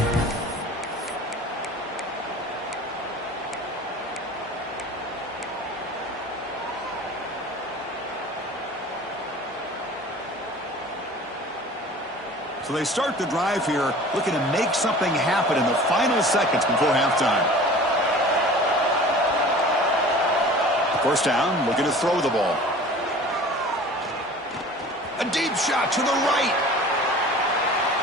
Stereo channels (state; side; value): normal; both; correlation 0.43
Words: So they start the drive here, looking to make something happen in the final seconds before halftime. First down, looking to throw the ball. A deep shot to the right.